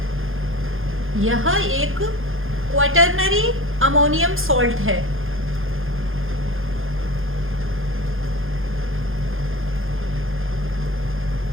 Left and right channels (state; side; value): late; left; 0.60 ms